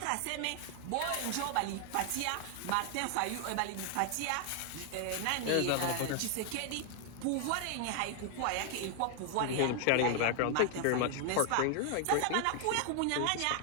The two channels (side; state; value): both; different; correlation 0.00